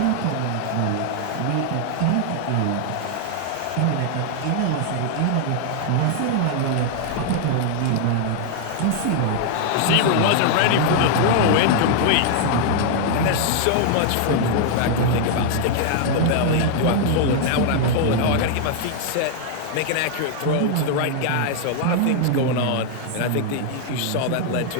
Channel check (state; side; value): different; both; correlation 0.00